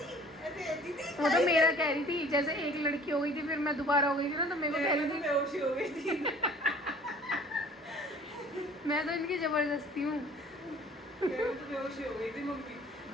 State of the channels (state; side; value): normal; both; correlation 0.50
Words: ऐसे ऐसी थी। वो तो मेरा कह रही थी, जैसे एक लड़की हो गई थी फिर मैं दोबारा हो गई थी ना, तो मेरे को कह रही थी बेहोशी हो गई थी। मैं तो इनकी जबरदस्ती हूँ। बेहोशी हो गई थी मम्मी।